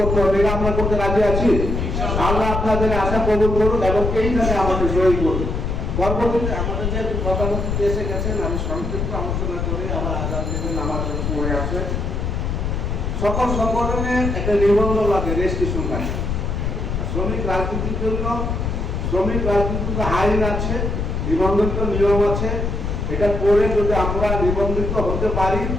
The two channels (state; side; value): noise; left; rumble, 2 dB below the sound